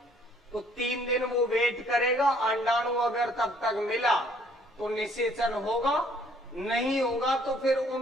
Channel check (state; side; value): normal; both; correlation 0.62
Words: तो 3 दिन वो वेट करेगा, अंडाणु अगर तब तक मिला तो निषेचन होगा, नहीं होगा तो फिर